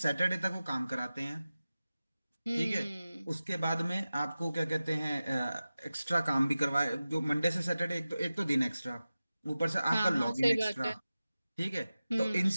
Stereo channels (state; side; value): inverted; both; correlation -0.95